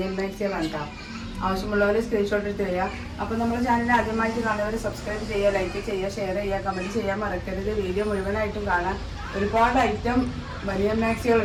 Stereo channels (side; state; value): both; identical; correlation 1.00